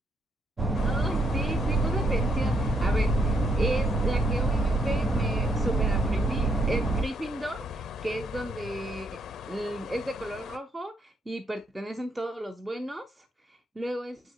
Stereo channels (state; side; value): normal; both; correlation 0.73